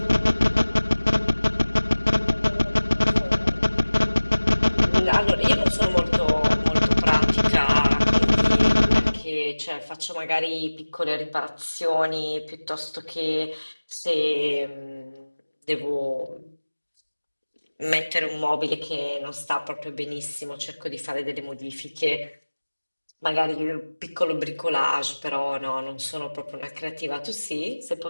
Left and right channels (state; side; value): inverted; both; correlation -1.00